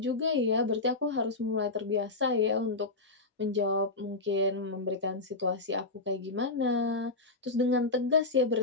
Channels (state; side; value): quieter; right; 3.3 dB